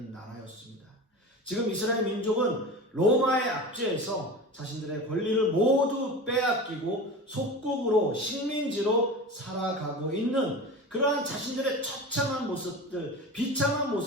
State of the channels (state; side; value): normal; both; correlation 0.31